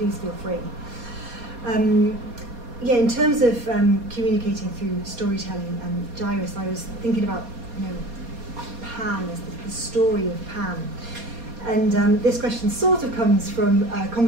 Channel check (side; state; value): left; late; 4.2 ms